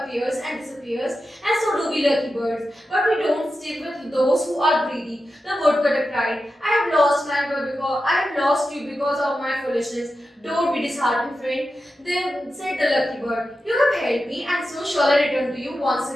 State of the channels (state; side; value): normal; both; correlation 0.91